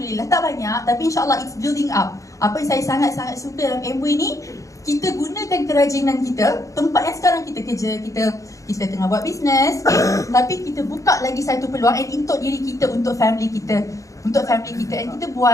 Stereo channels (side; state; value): right; late; 0.16 ms